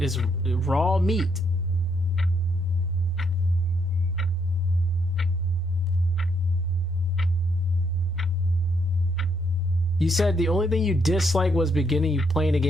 raw meat. You said the only thing you disliked was beginning you playing a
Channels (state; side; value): normal; both; correlation 0.74